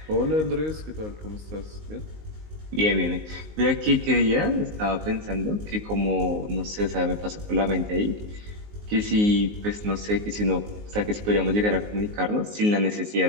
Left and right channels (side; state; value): left; late; 19 ms